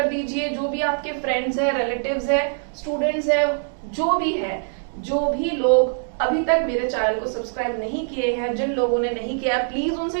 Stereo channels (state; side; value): silent; left; digital silence